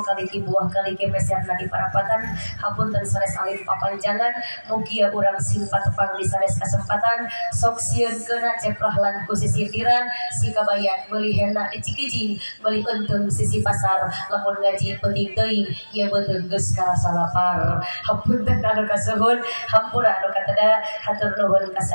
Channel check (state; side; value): inverted; both; correlation -1.00